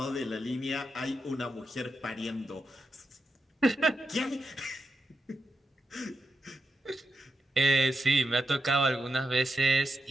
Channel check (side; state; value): both; normal; correlation 0.86